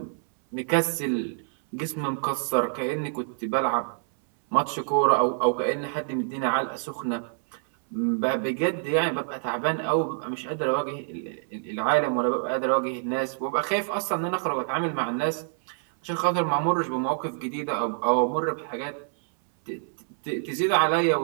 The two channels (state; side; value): silent; left; 60 dB below the other